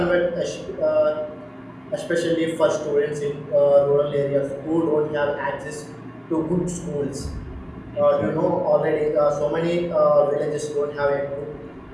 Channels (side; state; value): both; identical; correlation 1.00